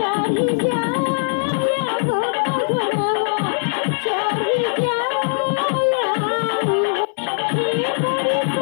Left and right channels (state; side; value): silent; right; 64 dB below the other